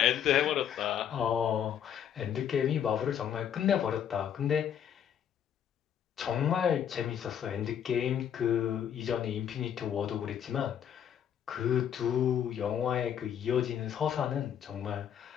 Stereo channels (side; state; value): right; quieter; 9.1 dB